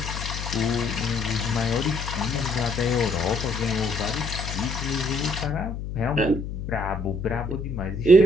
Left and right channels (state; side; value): noise; left; hum, 6 dB below the sound